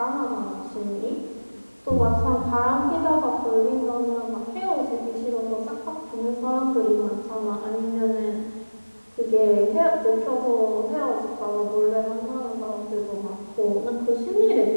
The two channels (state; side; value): inverted; both; correlation -1.00